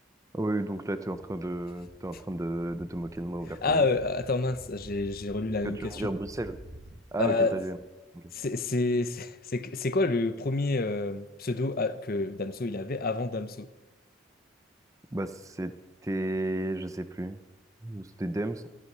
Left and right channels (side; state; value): both; normal; correlation 0.42